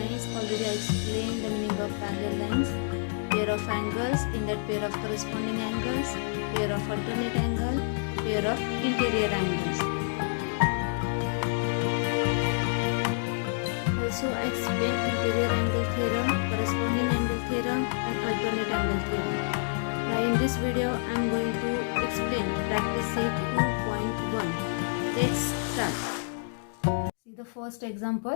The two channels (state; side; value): silent; right; digital silence